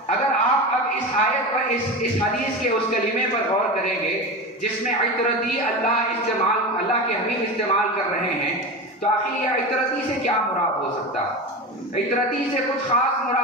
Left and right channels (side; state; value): both; normal; correlation 0.25